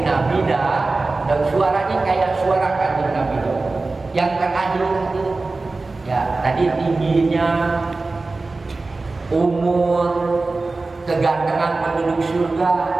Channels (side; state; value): left; quieter; 3.5 dB